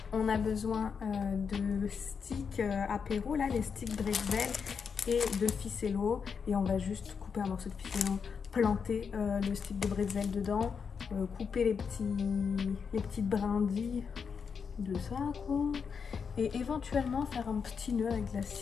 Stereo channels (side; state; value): right; quieter; 6.1 dB